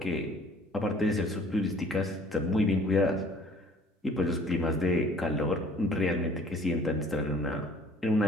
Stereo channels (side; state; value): both; normal; correlation 0.54